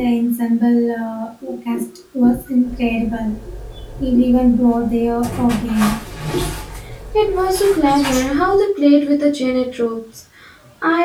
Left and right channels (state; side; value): identical; both; correlation 1.00